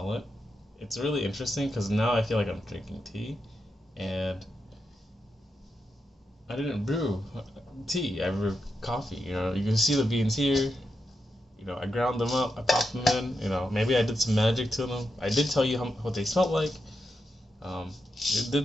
it. It's really interesting because now I feel like I'm drinking tea, and I didn't brew tea. I brewed coffee. You know, you can see the beans here. You know, I ground them up. I popped them in. You know, maybe I did some magic to them. I did tell you what they smelled like. It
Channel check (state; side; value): normal; both; correlation 0.86